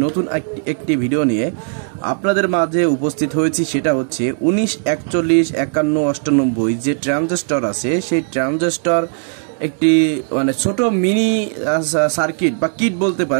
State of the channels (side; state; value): left; silent; digital silence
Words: নতুন একটি ভিডিও নিয়ে আপনাদের মাঝে উপস্থিত হয়েছি। সেটা হচ্ছে 19, 41, 51, 98 যে ট্রানজিস্টর আছে, সেই ট্রানজিস্টর একটি ছোট মিনি সার্কিট বা কিট বলতে